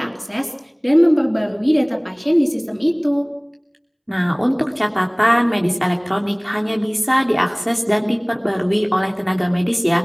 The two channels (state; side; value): identical; both; correlation 1.00